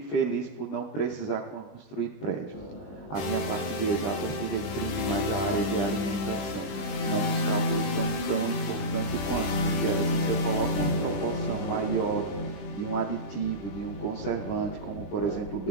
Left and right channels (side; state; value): right; late; 21 ms